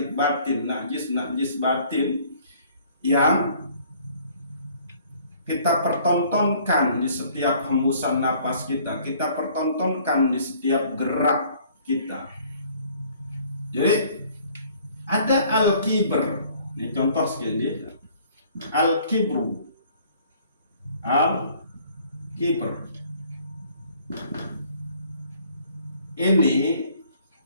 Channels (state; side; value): inverted; both; correlation -0.57